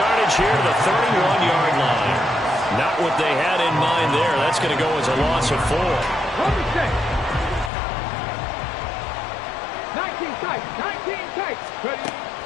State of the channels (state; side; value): drops out; right; at 7.7 s